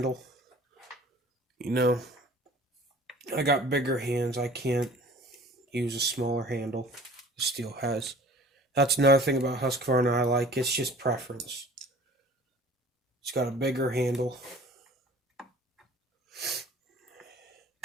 You know, I got bigger hands. I can't use a smaller handle the Steel has. That's another thing about Husqvarna I like. It's just preference. It's got a bigger handle.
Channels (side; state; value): both; normal; correlation 0.47